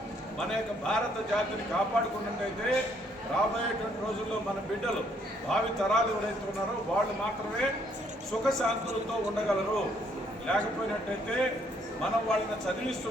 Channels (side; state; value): both; normal; correlation 0.68